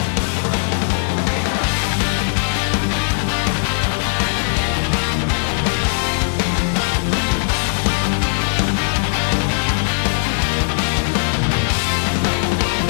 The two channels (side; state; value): right; silent; digital silence